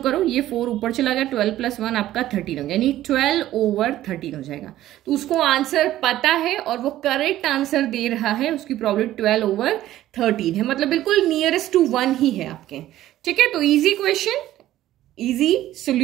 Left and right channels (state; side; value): quieter; left; 13.9 dB